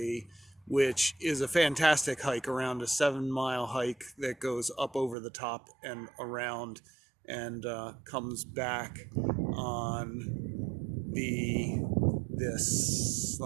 which is a fantastic hike, around a 7-mile hike that goes up over the top and around and comes back on this.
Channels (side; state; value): left; drops out; at 5.2 s